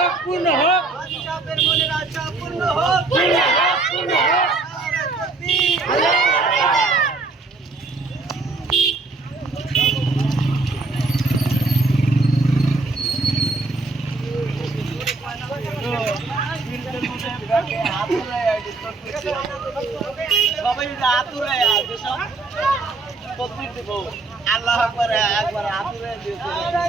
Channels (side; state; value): left; quieter; 3.5 dB